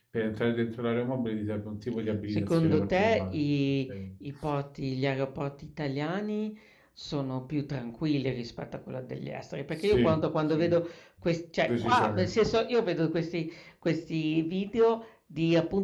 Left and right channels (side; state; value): both; identical; correlation 1.00